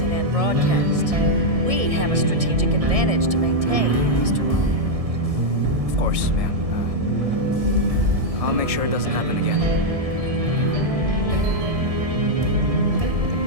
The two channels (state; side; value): late; left; 1.6 ms